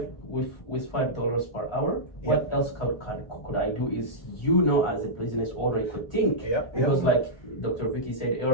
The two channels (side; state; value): right; late; 1.4 ms